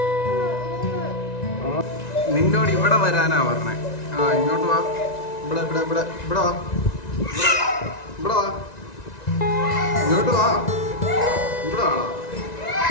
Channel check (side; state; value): right; late; 1.9 ms